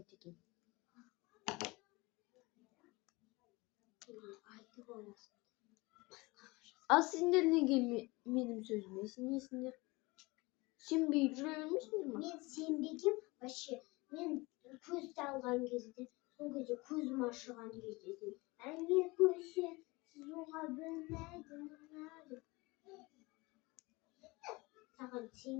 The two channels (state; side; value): quieter; right; 23.7 dB